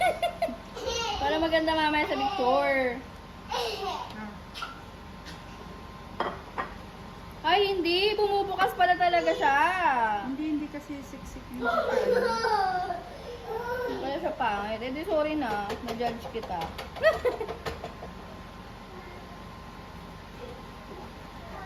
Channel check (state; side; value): identical; both; correlation 1.00